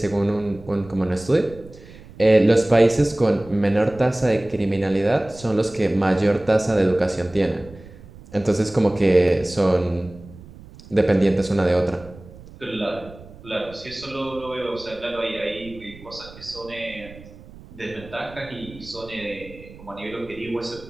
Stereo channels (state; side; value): noise; right; rumble, 19 dB below the sound